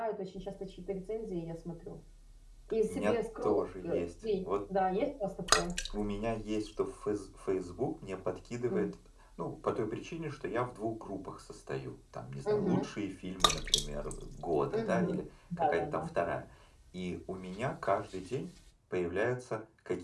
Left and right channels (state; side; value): identical; both; correlation 1.00